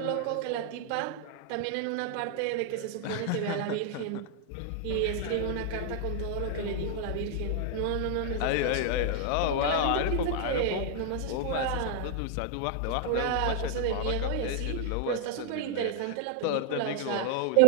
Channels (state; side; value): different; both; correlation 0.00